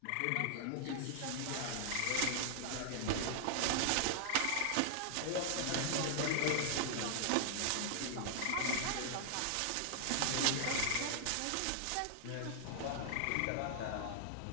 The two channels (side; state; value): both; different; correlation 0.00